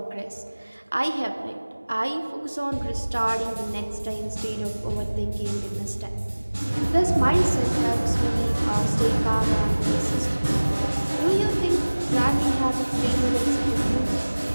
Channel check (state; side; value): inverted; both; correlation -1.00